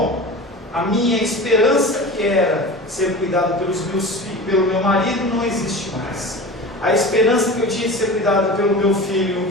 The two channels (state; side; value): normal; both; correlation 0.33